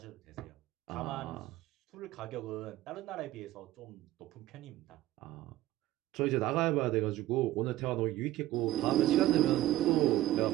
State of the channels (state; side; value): quieter; left; 15.2 dB